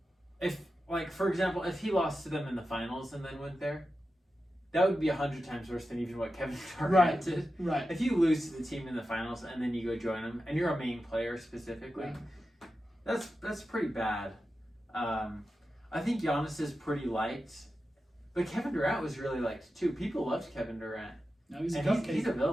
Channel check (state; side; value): normal; both; correlation 0.91